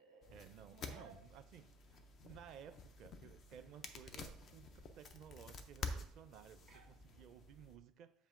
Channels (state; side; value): normal; both; correlation 0.61